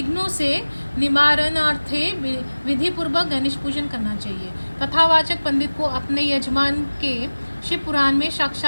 से निवारणार्थे विधि पूर्वक गणेश पूजन करना चाहिए। कथावाचक पंडित को अपने यजमान के शिव पुराण में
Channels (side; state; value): both; inverted; correlation -1.00